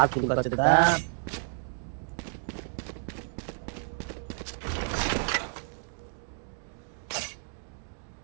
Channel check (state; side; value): silent; left; digital silence